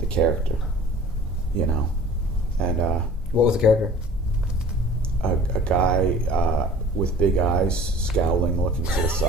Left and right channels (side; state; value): both; normal; correlation 0.46